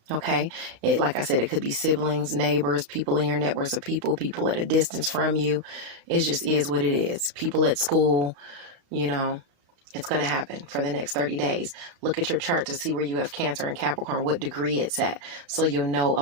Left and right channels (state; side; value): late; left; 35 ms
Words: Okay. Like I said, it could be siblings, neighbors, people in your networks of people at a distance from you. It just is what it is. People at school, you know, it's going to happen for the next 30 days. Look at your chart to see where you have Cancer and Capricorn, what degree it's at, so you'll know